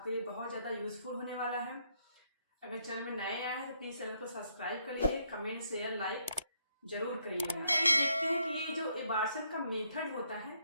लिए बहुत ज़्यादा यूजफुल होने वाला है। अगर चैनल में नए आए हैं तो प्लीज़ चैनल को सब्सक्राइब कर लीजिए, कमेंट शेयर लाइक जरूर करिएगा। ये देखते हैं कि ये जो एबार्शन का मेथड होता है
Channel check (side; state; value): both; inverted; correlation -0.74